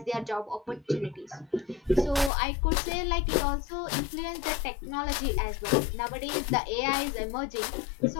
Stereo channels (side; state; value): right; drops out; at 2.3 s